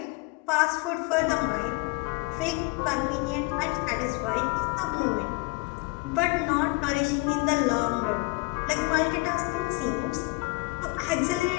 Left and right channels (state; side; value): quieter; right; 26.0 dB